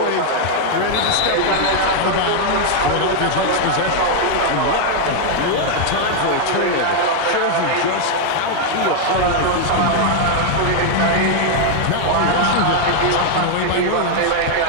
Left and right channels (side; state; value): both; different; correlation 0.00